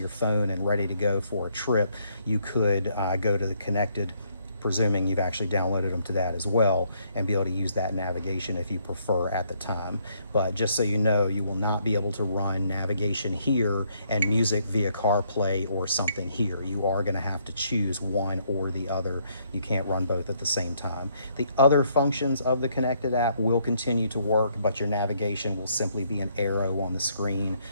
phone and ready to go for a trip, you could go to the Connected, presuming you've actually downloaded them to that as well, and be able to use that navigation if you prefer at the time. But just so you know, you will not be able to run navigation here and music via CarPlay or something here. You are going to have to choose one or the other. You can't run both at the same time. The other functions of the Connected app will continue to work, but your navigation will simply be an arrow on the screen.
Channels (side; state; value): both; inverted; correlation -0.71